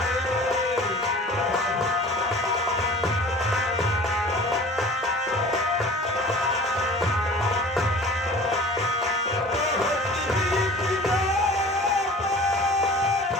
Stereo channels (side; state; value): both; normal; correlation 0.42